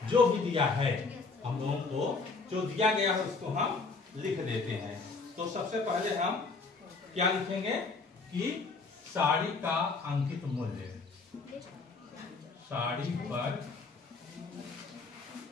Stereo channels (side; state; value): right; quieter; 4.1 dB